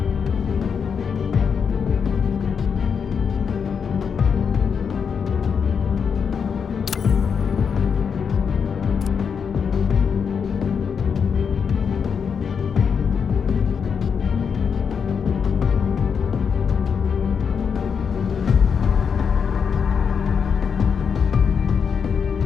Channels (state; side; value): quieter; right; 6.5 dB